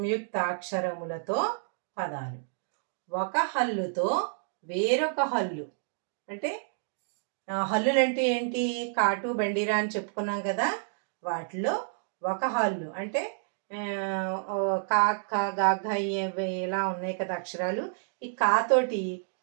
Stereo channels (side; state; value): left; silent; digital silence